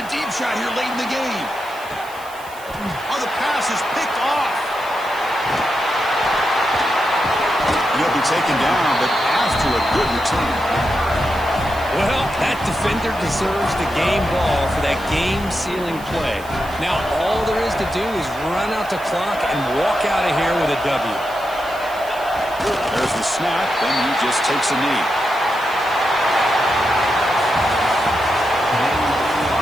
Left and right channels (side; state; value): right; noise; hiss, 20 dB below the sound